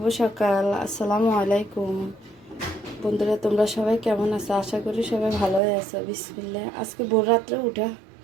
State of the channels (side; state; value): left; drops out; at 5.6 s